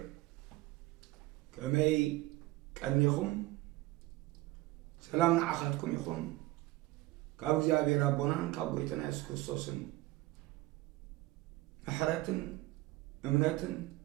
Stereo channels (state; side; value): quieter; left; 18.6 dB